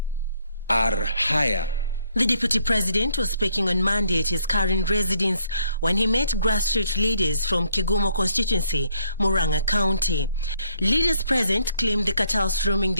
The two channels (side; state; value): both; inverted; correlation -0.68